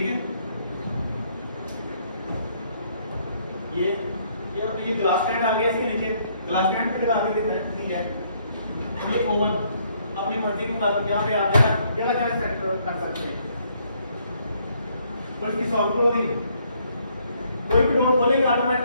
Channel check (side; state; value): both; inverted; correlation -0.68